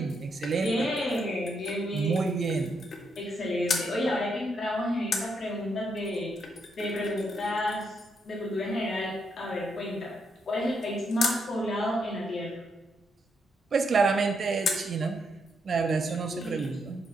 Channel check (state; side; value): normal; both; correlation 0.78